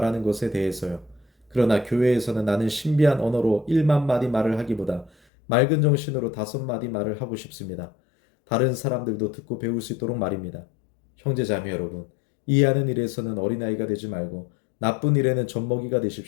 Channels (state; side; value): drops out; right; at 5.1 s